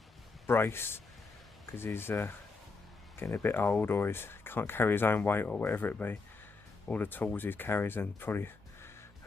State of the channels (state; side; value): quieter; right; 4.1 dB